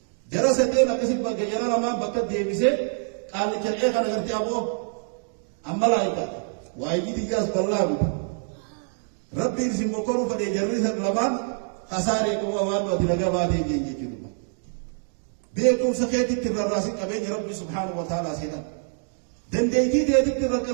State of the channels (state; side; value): silent; left; 61 dB below the other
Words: جرستين أكسب بجرا لما بكت ديبسه قال كريه كان قرتي أبو أما لا يكاد وايجي تجاز بالله ربي يرسم بكرو فدي جريس لمان خسارة كوا وان وتلقى بعدين يجي كذا بيكم سكيت الراسين أبين ربي سبحانه وتعالى سيدا دنديتي ديت